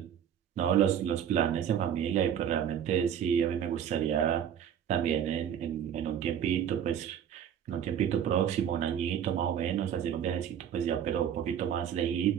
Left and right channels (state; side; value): quieter; left; 9.2 dB